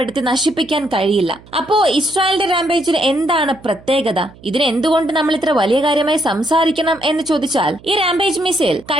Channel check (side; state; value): right; noise; hum, 23 dB below the sound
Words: നശിപ്പിക്കാൻ കഴിയില്ല. അപ്പോ ഇസ്രായേലിന്റെ റാംപേജിന് എന്താണ് പ്രത്യേകത? ഇതിന് എന്തുകൊണ്ട് നമ്മൾ ഇത്ര വലിയ കാര്യമായി സംസാരിക്കണം എന്ന് ചോദിച്ചാൽ, ഈ റാംപേജ് മിസൈൽ